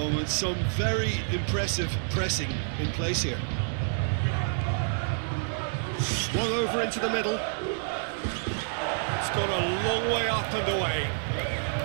Some very impressive pressing in place here. Swung over into the middle. It's gone a long way up and away.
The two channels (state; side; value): silent; left; 59 dB below the other